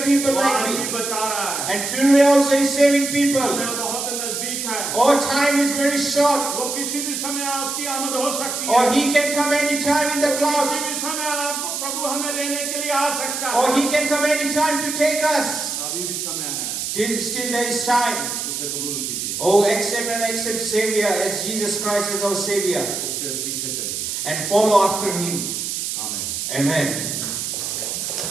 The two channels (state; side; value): noise; right; hiss, 3 dB below the sound